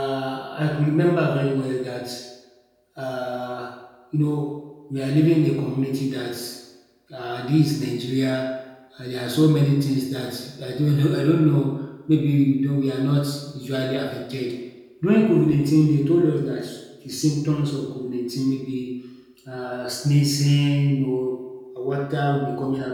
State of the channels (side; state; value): both; identical; correlation 1.00